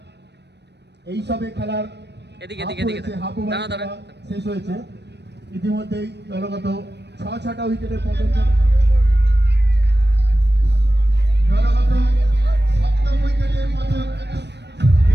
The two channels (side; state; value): left; late; 0.50 ms